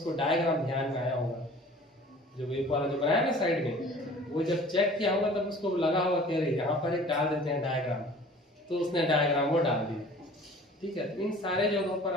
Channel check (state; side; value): normal; both; correlation 0.47